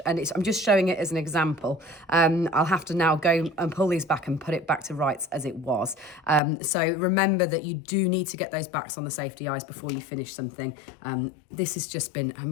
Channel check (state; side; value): drops out; right; at 6.4 s